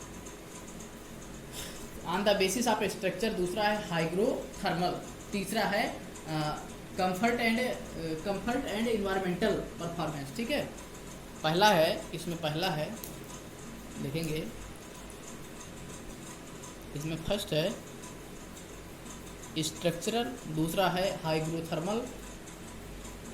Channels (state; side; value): identical; both; correlation 1.00